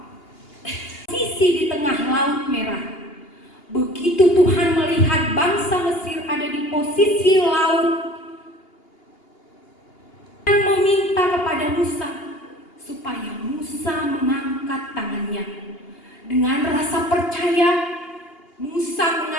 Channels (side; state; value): right; late; 2.8 ms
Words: sisi di tengah Laut Merah. Begitu Tuhan melihat bangsa Mesir ada di posisi laut, Tuhan meminta kepada Musa supaya Musa mengangkat tangannya. Dengan rasa percaya, Musa